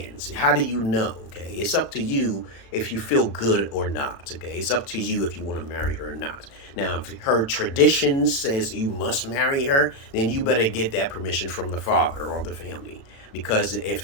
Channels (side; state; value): right; late; 36 ms